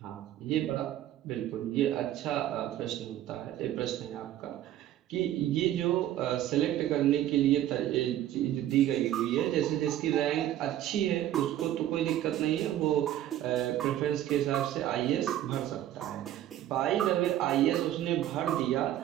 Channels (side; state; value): left; quieter; 12.5 dB